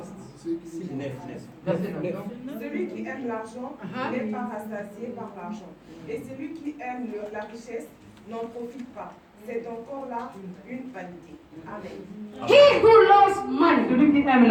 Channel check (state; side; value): identical; both; correlation 1.00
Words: Verset 9. Celui qui aime l'argent n'est pas rassasié par l'argent. Et celui qui aime la richesse n'en profite pas. C'est encore là une vanité. Amen. He who loves money, Celui qui aime